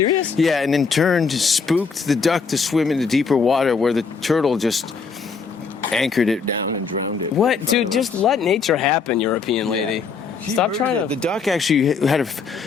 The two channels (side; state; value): right; quieter; 5.3 dB